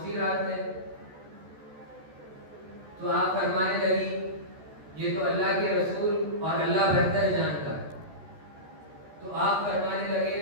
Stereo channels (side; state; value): left; late; 14 ms